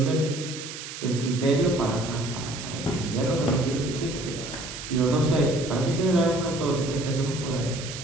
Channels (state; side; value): noise; right; hiss, 10 dB below the sound